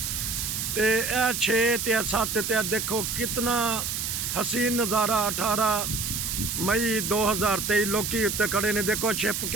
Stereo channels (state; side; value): noise; right; hiss, 2 dB below the sound